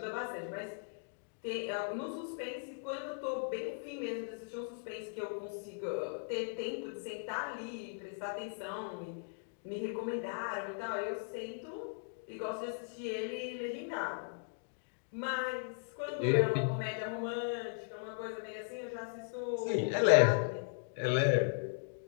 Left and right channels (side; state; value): right; silent; digital silence